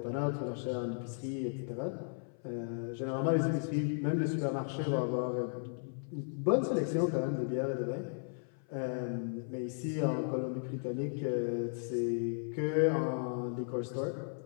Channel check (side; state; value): right; silent; 54 dB below the other